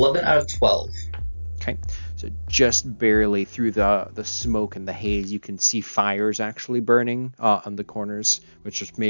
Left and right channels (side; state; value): both; inverted; correlation -1.00